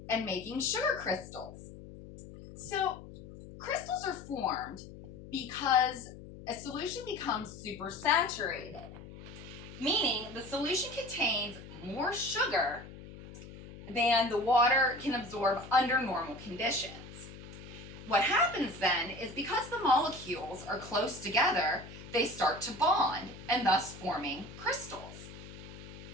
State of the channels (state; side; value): noise; left; hum, 15 dB below the sound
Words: and making sugar crystals. So, crystals are formed because a solution becomes supersaturated, meaning the solution contains more sugar than the water can absorb under normal conditions. What happens then is because the molecules are close together, they start to bond and thus forming crystals.